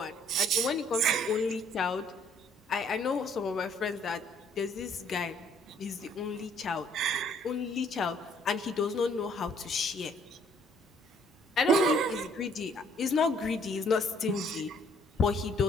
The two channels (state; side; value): normal; both; correlation 0.63